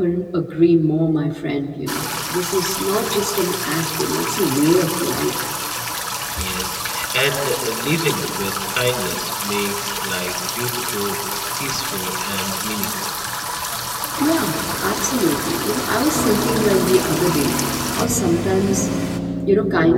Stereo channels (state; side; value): identical; both; correlation 1.00